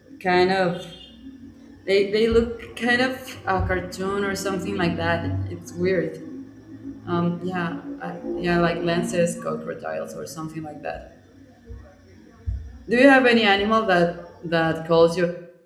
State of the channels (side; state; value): both; identical; correlation 1.00